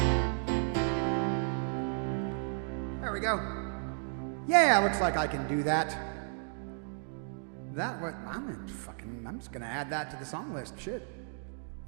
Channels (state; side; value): silent; left; 56 dB below the other